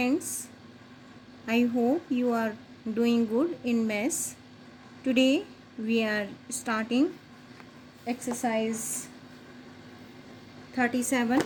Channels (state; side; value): identical; both; correlation 1.00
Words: I hope you are doing good in maths. Today we are starting exercise 37.